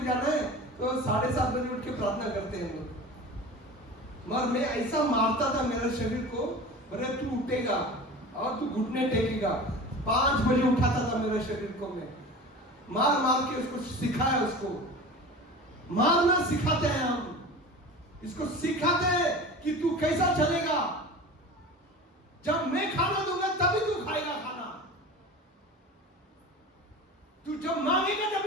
जाना है तो 7:30 बजे उठ के प्रार्थना करते हैं लोग। मगर मैं ऐसा मारता था मेरे शरीर को, बोले तू उठेगा और तू घुटने टेकेगा। 5 बजे उठाता था मेरे शरीर को, मैं मार के उसको सिखाया, उसको मारना सिखाते हैं हम, इसको सिखाते हैं कि तू कैसा चलेगा। जब मैं खाना दूंगा तभी तू खाएगा खाना, तू जब मांगेगा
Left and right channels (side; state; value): both; normal; correlation 0.35